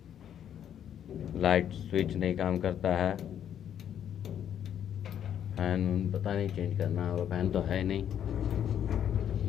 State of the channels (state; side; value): quieter; right; 9.6 dB